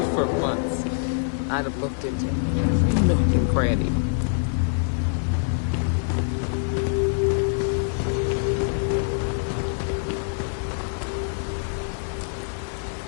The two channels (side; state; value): right; silent; 62 dB below the other